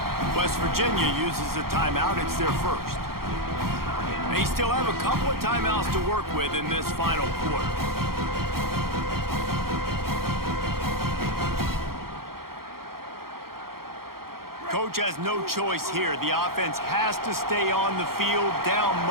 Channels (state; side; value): late; left; 0.93 ms